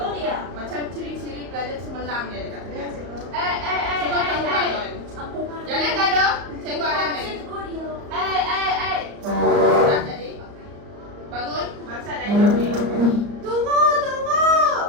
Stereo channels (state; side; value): late; left; 34 ms